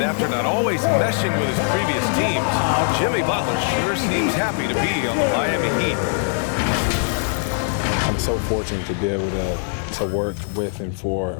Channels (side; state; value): right; silent; 65 dB below the other